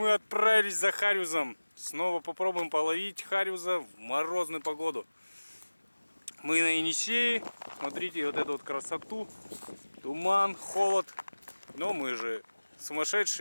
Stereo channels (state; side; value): inverted; both; correlation -1.00